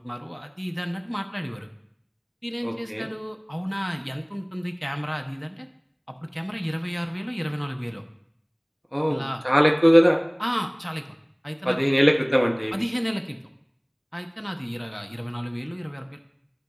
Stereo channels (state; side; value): identical; both; correlation 1.00